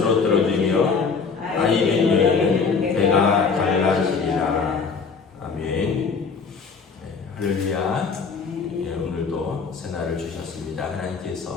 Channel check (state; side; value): quieter; right; 5.2 dB